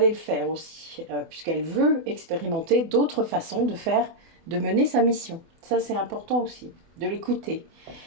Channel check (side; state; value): left; late; 24 ms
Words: le faire aussi, puisqu'elle veut expérimenter d'autres façons de mener sa mission. Ça, c'est important aussi, de l'écouter.